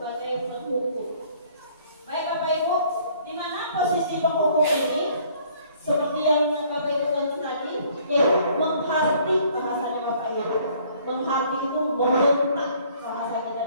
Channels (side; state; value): both; inverted; correlation -0.59